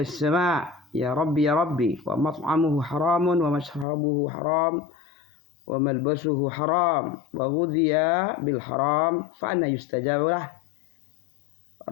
ya Rabbi wa mat'amuhu haramun wa mashrabuhu haram wa malbasuhu haram wa ghudhiya bil haram fa anna yustajabu lah.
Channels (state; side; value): drops out; right; at 3.9 s